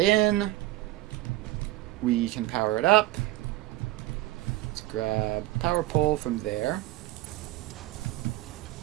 in. We can power it up. Let's grab power pole from there.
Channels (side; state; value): left; quieter; 16.9 dB